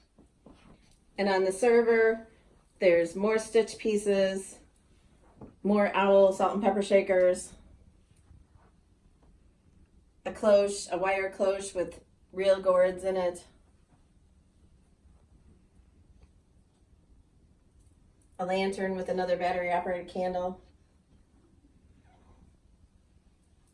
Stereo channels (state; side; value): identical; both; correlation 1.00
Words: And on the server, there's more stitch pieces, more owl salt and pepper shakers, a cloche, a wire cloche with real gourds in it, a lantern with another battery operated candle.